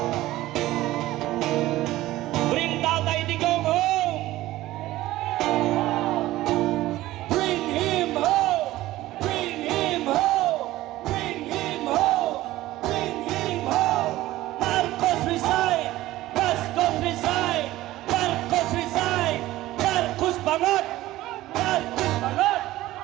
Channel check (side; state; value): left; quieter; 16.3 dB